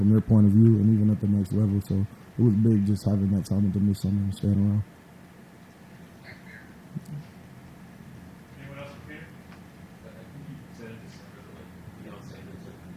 their point of view, and even at the next level. So it was big just having that time with them this summer and staying around.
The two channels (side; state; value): both; identical; correlation 1.00